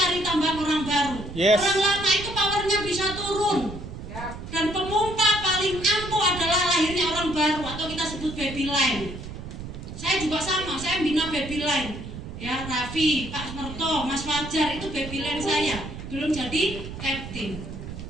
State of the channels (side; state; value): right; noise; rumble, 10 dB below the sound